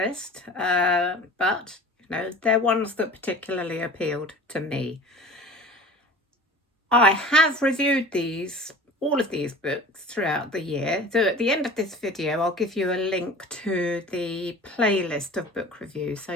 but they're ones that particularly appealed to me. I have reviewed all of these books throughout the year. So at the end of this video, I'll give you a link to the playlist of book reviews so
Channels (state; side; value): normal; both; correlation 0.41